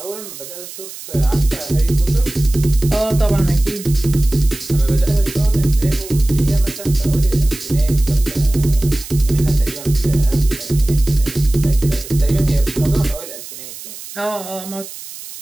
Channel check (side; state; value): right; noise; hiss, 13 dB below the sound